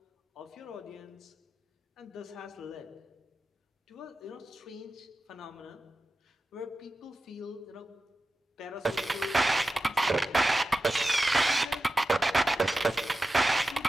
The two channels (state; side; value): normal; both; correlation 0.93